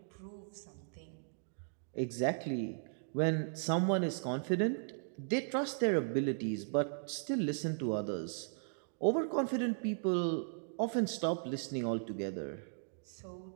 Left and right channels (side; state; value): left; silent; digital silence